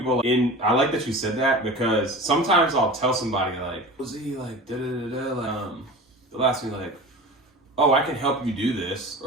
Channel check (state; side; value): normal; both; correlation 0.35